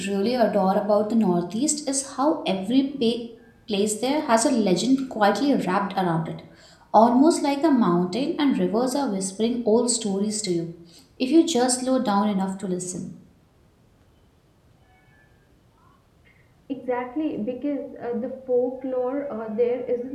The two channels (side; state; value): both; identical; correlation 1.00